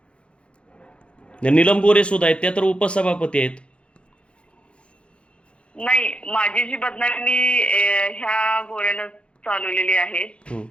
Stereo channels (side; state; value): right; late; 0.058 ms